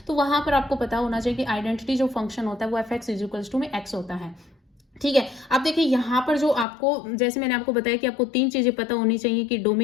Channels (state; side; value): drops out; right; at 6.7 s